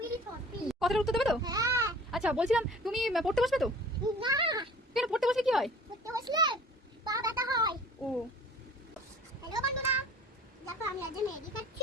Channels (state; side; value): normal; both; correlation 0.47